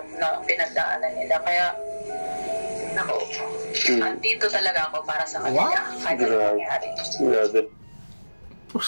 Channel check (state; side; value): inverted; both; correlation -1.00